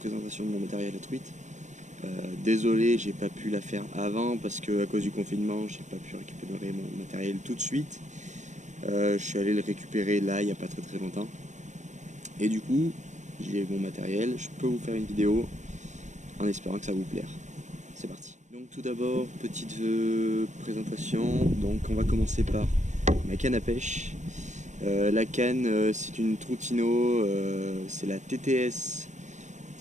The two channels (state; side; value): late; left; 0.35 ms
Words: de mon matériel à truite. Désolé, j'ai pas pu la faire avant parce que à cause du confinement, j'ai pas pu récupérer mon matériel tout de suite. Je suis allé le récupérer là, il n'y a pas très longtemps. Et du coup, j'ai mon matériel, je peux vous faire une vidéo en espérant que ça vous plaire. C'est parti. Donc tout d'abord, petite présentation. Donc on va commencer par ma canne à pêche. La canne, c'est une Troutino, c'est la